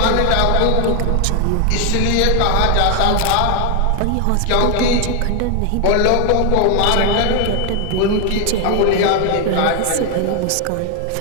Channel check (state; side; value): different; both; correlation 0.00